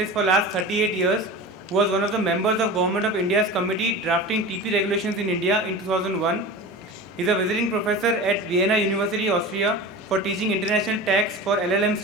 for last 38 years, who was one of the members of Government of India's committee drafting TP regulations in India in 2001. He is a visiting professor at Vienna University, Austria, for teaching international tax for LLM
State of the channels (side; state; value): both; normal; correlation 0.32